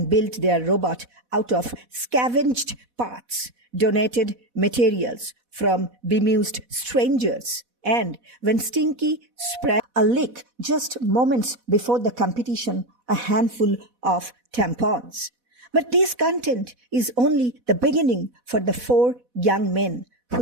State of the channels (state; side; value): late; left; 4.1 ms